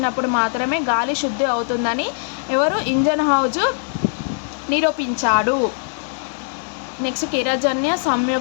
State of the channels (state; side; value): silent; right; digital silence